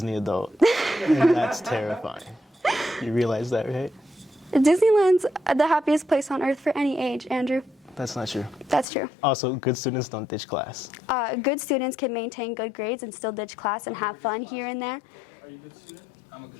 adult, and that's terrifying. You realize that, right? Disneyland's the happiest place on earth for any age, Andrew. That's not true. That's true. Also, good students don't ditch class. Good students can maintain good grades and still ditch class and have fun here and there. Are you a good student? I'm a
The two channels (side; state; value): right; drops out; at 8.8 s